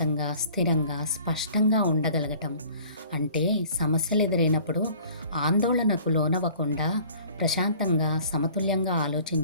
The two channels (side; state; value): both; inverted; correlation -0.51